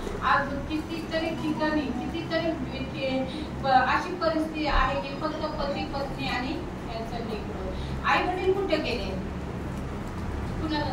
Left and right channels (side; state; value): both; identical; correlation 1.00